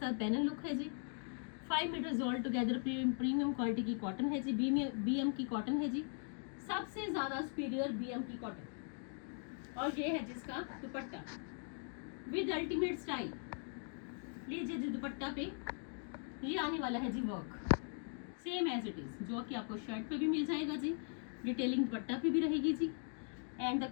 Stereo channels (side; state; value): right; silent; 51 dB below the other